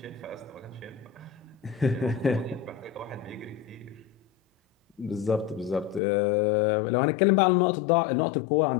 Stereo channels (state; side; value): drops out; right; at 6.0 s